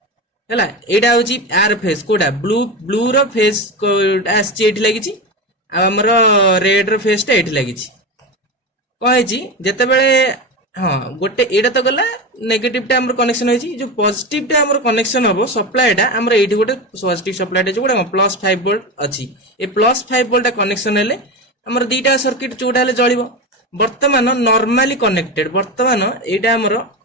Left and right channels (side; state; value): both; normal; correlation 0.21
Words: हला एटा होची आर फेज कोडा ब्लू रो फेज आछि एठी लागिछि आ हमर रेड रो फेज टा एठी लागिछि कहैछि जते बेले हां गोटे एटा तो गला नेगेटिव टा हमर कनेक्शन होइछि जो पॉजिटिव टा हमर कनेक्शन हबो सप्लाई टा हमर एठी गोटे पॉजिटिव सप्लाई टा जोडा +5 वोल्ट अछि ए +5 वोल्ट कनेक्शन हेले हमर दीटा सर्किट जोडा हेले जळिबो वर्तमान नॉर्मली कनेक्टेड वर्तमान एटा हमर